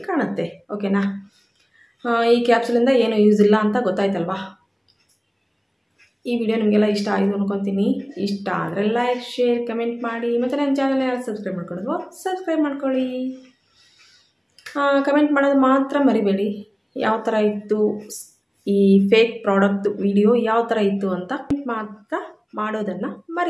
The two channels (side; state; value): both; identical; correlation 1.00